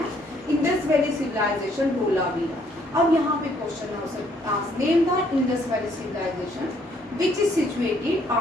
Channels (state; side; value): normal; both; correlation 0.66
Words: Indus valley civilisation, Dholavira. अब यहाँ पे क्वेश्चन है, name the Indus valley civilisation which is situated